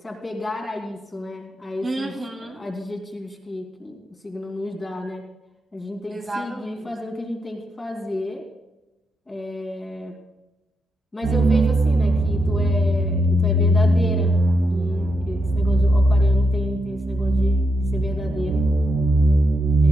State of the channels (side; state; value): both; normal; correlation 0.83